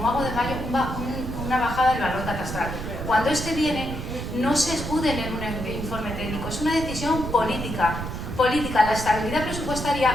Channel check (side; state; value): right; noise; rumble, 6 dB below the sound